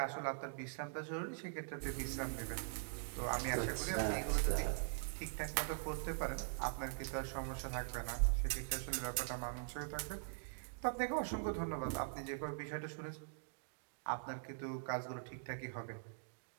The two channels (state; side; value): silent; left; digital silence